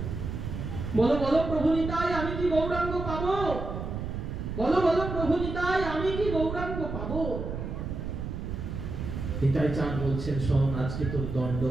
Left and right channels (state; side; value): noise; right; rumble, 5 dB below the sound